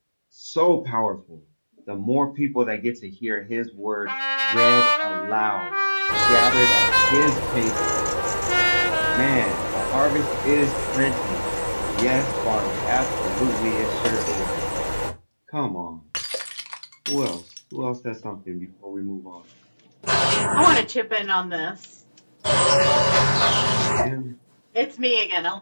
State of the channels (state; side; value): inverted; both; correlation -1.00